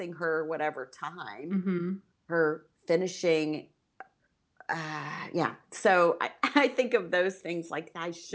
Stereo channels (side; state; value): both; identical; correlation 1.00